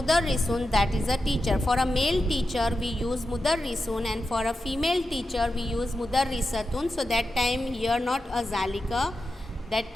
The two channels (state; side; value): normal; both; correlation 0.90